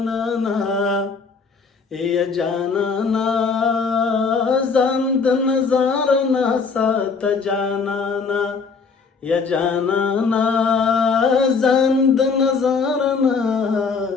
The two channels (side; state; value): right; quieter; 5.0 dB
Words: یا جانانه ځان د نظر نه ساته جانانه یا جانانه ځان د نظر نه